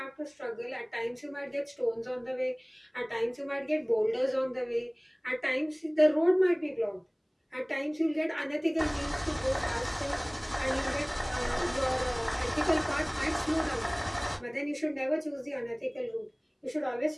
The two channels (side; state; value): both; identical; correlation 1.00